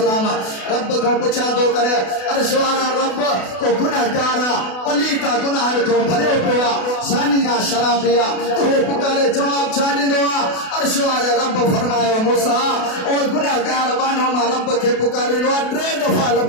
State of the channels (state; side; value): late; right; 32 ms